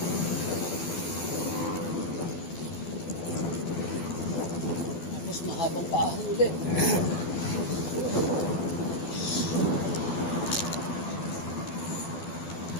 Mahabang paahon ulit.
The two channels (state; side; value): late; right; 12 ms